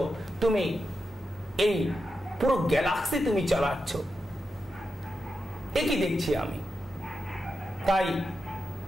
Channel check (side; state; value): both; normal; correlation 0.88